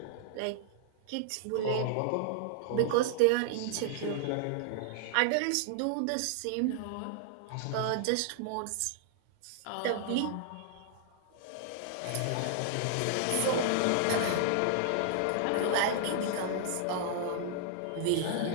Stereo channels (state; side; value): different; both; correlation -0.01